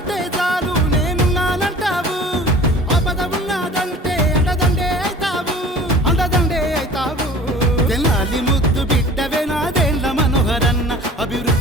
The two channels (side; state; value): both; normal; correlation 0.44